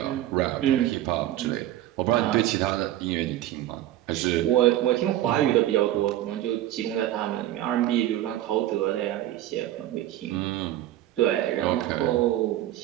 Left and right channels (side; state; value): left; quieter; 13.7 dB